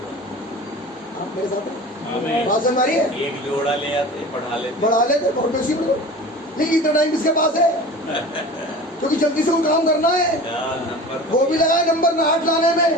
आप मेरे साथ हैं? बात समझ आ रही है? एक जोड़ा ले आते, बढ़ा लेते बहुत बेसी में। लेकिन इतना टाइम किसके पास है? क्योंकि जल्दी से वो काम करना है, वो भी लगाए नंबर 8 लाने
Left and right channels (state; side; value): normal; both; correlation 0.37